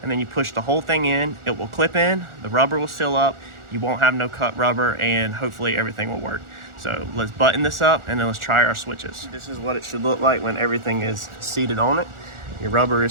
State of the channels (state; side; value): late; left; 1.4 ms